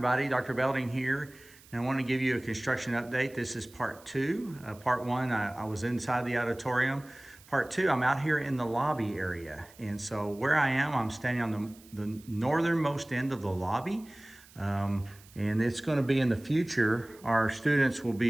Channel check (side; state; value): right; noise; hiss, 24 dB below the sound